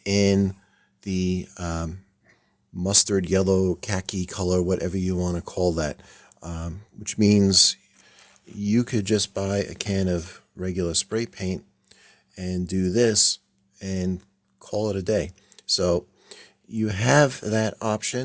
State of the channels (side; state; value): both; identical; correlation 1.00